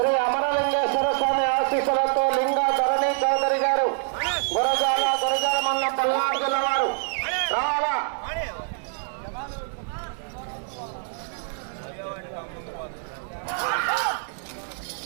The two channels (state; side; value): silent; left; 61 dB below the other